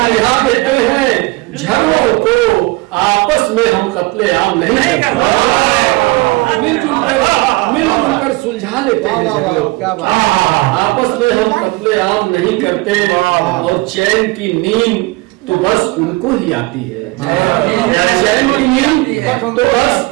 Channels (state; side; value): quieter; left; 23.0 dB